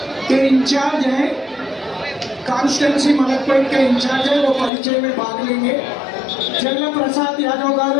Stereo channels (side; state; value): right; drops out; at 4.7 s